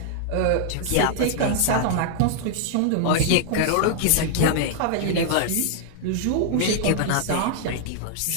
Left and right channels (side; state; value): both; different; correlation -0.01